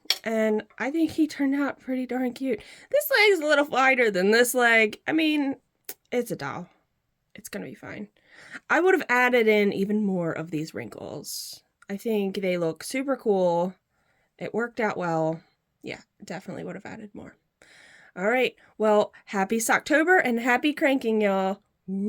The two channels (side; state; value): both; identical; correlation 1.00